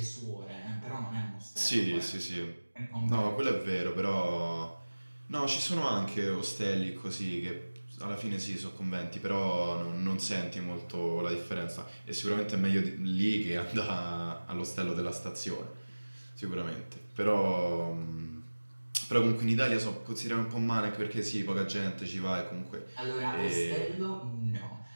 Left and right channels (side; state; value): both; inverted; correlation -1.00